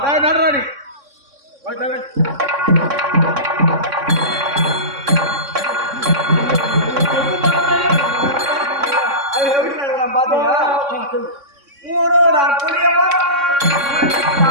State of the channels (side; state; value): left; late; 3.6 ms